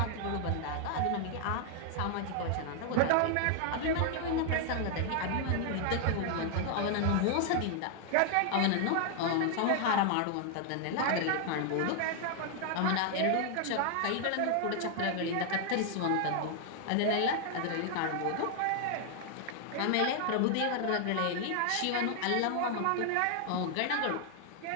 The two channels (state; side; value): different; both; correlation 0.00